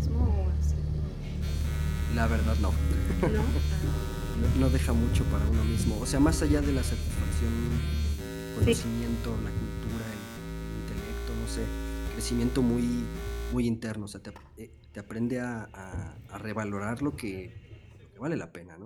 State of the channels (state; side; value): identical; both; correlation 1.00